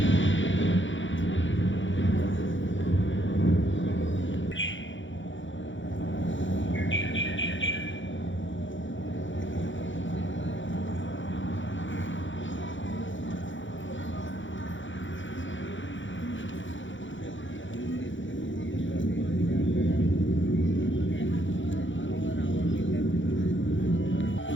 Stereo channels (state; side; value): late; right; 0.55 ms